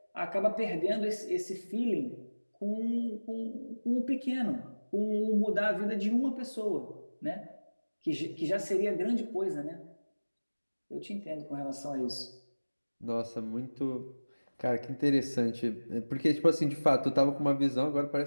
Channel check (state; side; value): inverted; both; correlation -1.00